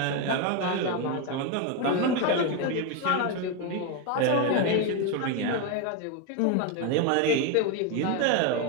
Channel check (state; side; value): different; both; correlation 0.02